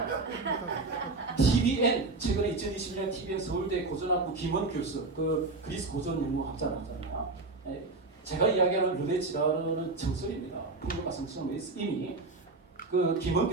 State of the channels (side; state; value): left; quieter; 3.5 dB